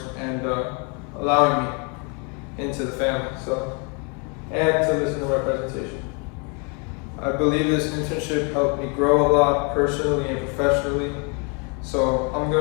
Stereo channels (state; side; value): quieter; right; 34.9 dB